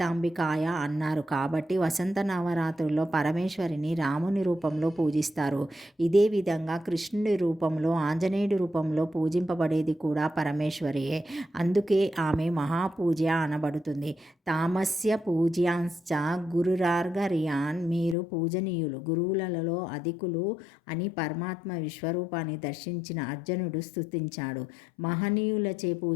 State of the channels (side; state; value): right; drops out; at 18.2 s